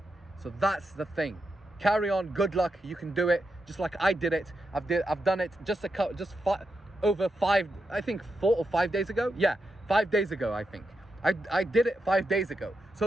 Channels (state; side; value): normal; both; correlation 0.85